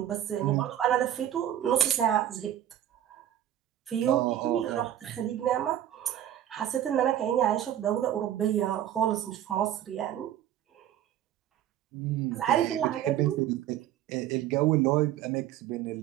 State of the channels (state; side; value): quieter; left; 11.4 dB